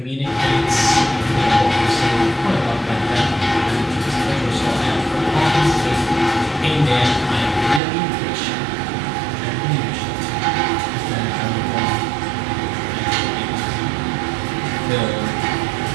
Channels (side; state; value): left; drops out; at 7.8 s